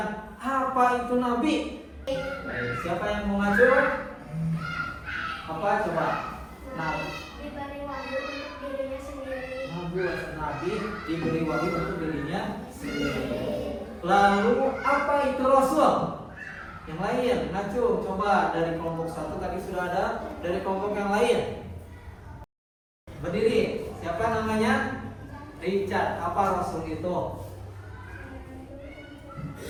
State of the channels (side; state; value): both; identical; correlation 1.00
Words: apa itu Nabi? Siapa yang mau maju? Apa coba? Diberi wahyu untuk dirinya sendiri. Nabi diberi wahyu untuk dirinya sendiri. Lalu apa itu Rasul? Yang lain, maju. Coba dari kelompok 1 tadi sudah ada, dari kelompok yang lain. Berdiri, siapa namanya? Richard. Apa Rasul itu?